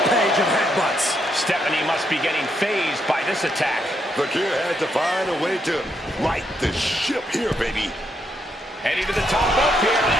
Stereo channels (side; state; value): both; normal; correlation 0.78